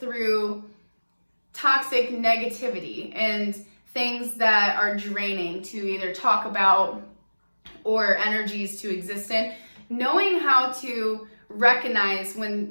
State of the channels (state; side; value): inverted; both; correlation -1.00